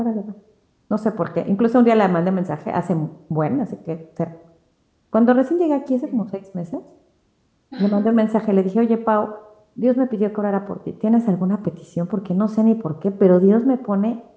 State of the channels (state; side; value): identical; both; correlation 1.00